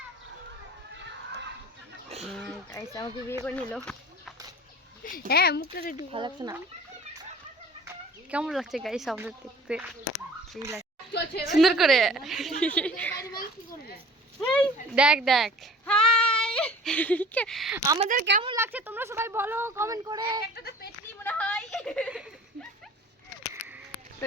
আমাকে বিয়ে করে নিল। হ্যাঁ মুখটা একটু ভালো লাগছে না, কেমন লাগছে গাইস আমাদের দেখতে? সুন্দর করে দেখ দেখ হাই আমাদের কেমন লাগছে তোমরা সবাই বলো কমেন্ট করে। তো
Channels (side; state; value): both; normal; correlation 0.47